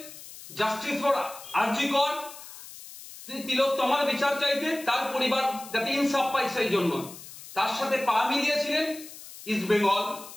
জাস্টিস ফর আরজি কর, তিলোত্তমার বিচার চাইতে, তার পরিবার যাতে ইনসাফ পায় সেই জন্য। তার সাথে পা মিলিয়েছিলেন ইস্টবেঙ্গল,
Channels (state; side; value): noise; left; hiss, 15 dB below the sound